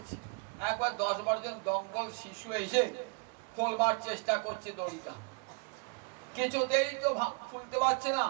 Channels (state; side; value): quieter; left; 32.7 dB